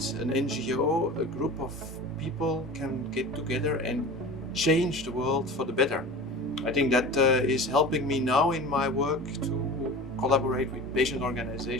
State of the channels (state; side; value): normal; both; correlation 0.35